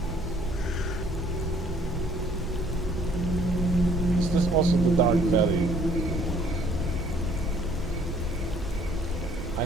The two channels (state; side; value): normal; both; correlation 0.60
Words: Is this also the Dark Valley? I